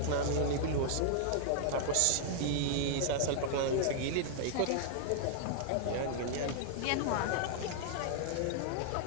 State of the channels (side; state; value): both; different; correlation -0.01